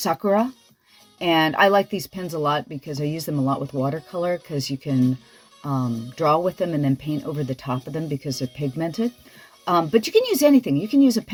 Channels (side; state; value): both; identical; correlation 1.00